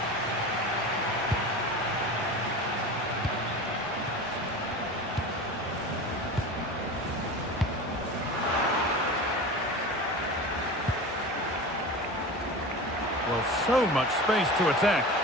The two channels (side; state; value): both; normal; correlation 0.31